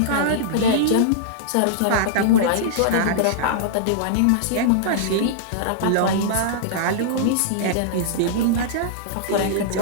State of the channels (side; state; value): both; different; correlation -0.02